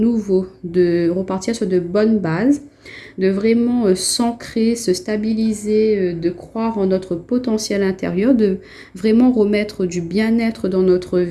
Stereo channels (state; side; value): identical; both; correlation 1.00